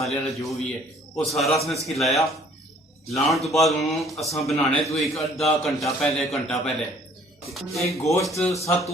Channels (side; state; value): both; normal; correlation 0.57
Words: वाला जो भी है वो सारा असं इसकी लाया। लाने तो बाद असा बनाने तो एक अद्धा घंटा पहले एक गोश्त 7